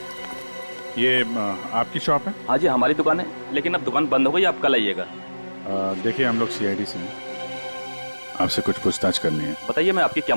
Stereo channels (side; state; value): both; inverted; correlation -1.00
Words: ये आपकी शॉप है? हाँ जी, हमारी दुकान है, लेकिन अब दुकान बंद हो गई, आप कल आइएगा। देखिए, हम लोग सीआईडी से हैं, आपसे कुछ पूछताछ करनी है। बताइए, मैं आपकी क्या